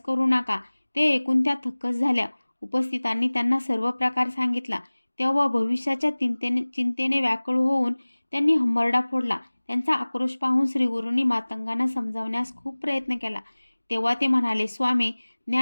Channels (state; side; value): inverted; both; correlation -1.00